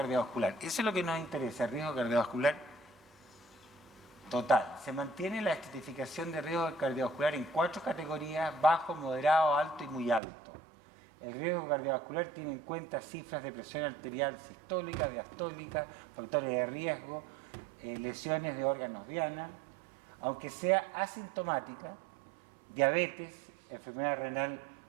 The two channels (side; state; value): left; drops out; at 10.2 s